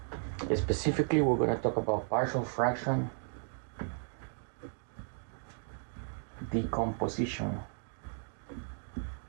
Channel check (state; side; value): silent; left; 55 dB below the other